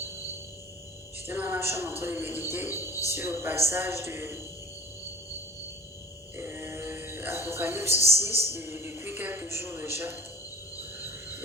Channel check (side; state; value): both; normal; correlation 0.44